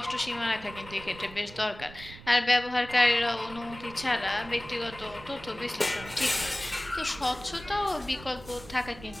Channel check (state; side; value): noise; right; rumble, 17 dB below the sound